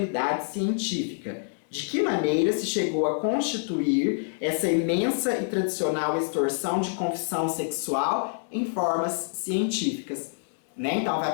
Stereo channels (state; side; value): silent; right; digital silence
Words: científica. De que maneira se chegou a constituir essa imensa e tradicional extorsão de confissão sexual em formas científicas, né? Então vai